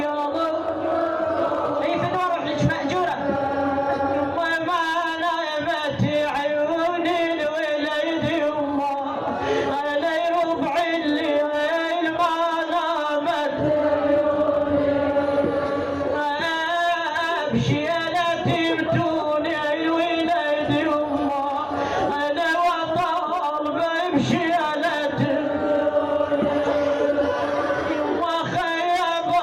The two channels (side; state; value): both; identical; correlation 1.00